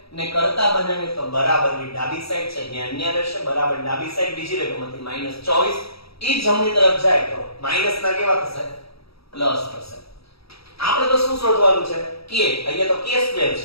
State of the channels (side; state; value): right; late; 0.76 ms